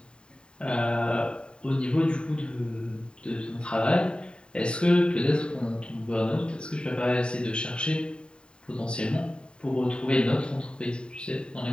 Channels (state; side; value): late; right; 0.051 ms